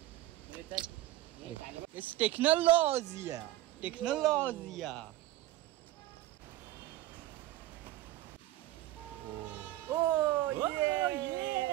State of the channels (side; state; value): left; quieter; 15.4 dB